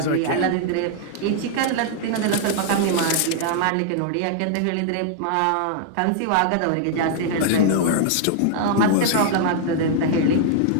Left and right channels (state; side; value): different; both; correlation -0.01